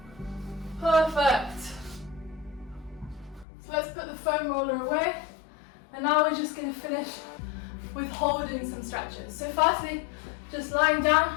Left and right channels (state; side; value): drops out; right; at 3.5 s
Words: Perfect. So let's put the foam roller away, and now we're just going to finish with holding some stretches. So firstly, just lying